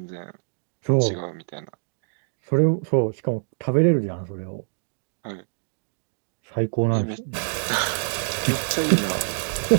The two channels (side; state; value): left; silent; digital silence